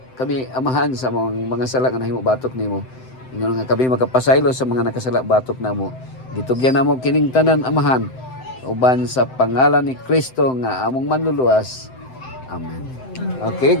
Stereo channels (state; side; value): late; right; 7.8 ms